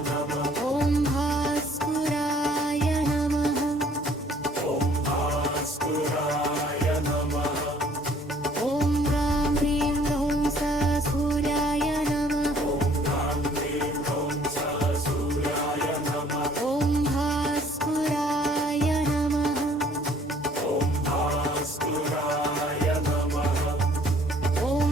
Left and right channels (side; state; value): both; normal; correlation 0.58